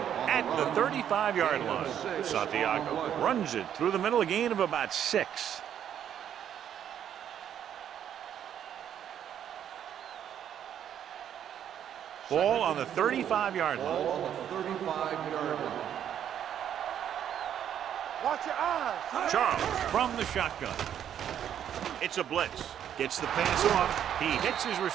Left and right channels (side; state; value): left; quieter; 9.7 dB